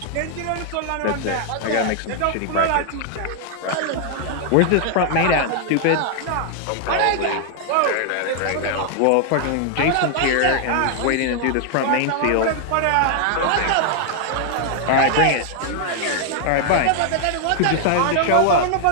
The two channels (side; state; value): both; different; correlation 0.00